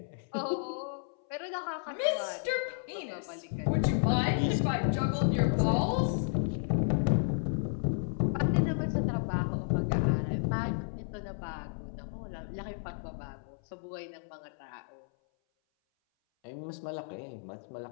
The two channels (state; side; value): silent; right; 56 dB below the other